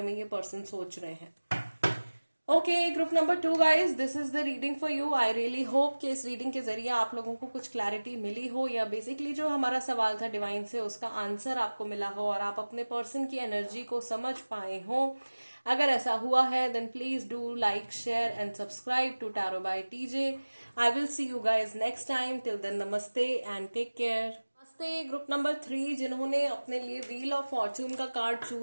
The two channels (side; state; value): both; inverted; correlation -1.00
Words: में ये पर्सन सोच रहे हैं। Okay, group number 2 guys, this is the reading for you. I really hope कि इस रीडिंग के जरिए आप लोगों को कुछ क्लैरिटी मिली हो, या बेसिकली जो हमारा सवाल था डिवाइन से उसका आंसर आपको मिला हो, और आप अपने पर्सन की एनर्जी को समझ पाए हो। अगर ऐसा हुआ है then please do like, share and subscribe to tarot by TJ. I will see you guys next time, till then namaste and take care. Namaste group number 3 जिन्होंने अपने लिए व्हील ऑफ फॉर्चून का कार्ड